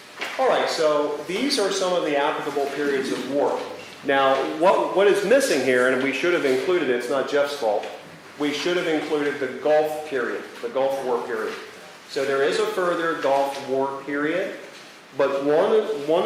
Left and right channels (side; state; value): both; identical; correlation 1.00